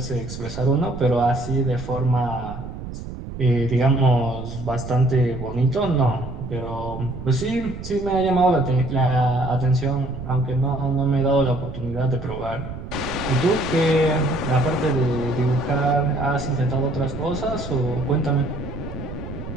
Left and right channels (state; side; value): noise; right; rumble, 10 dB below the sound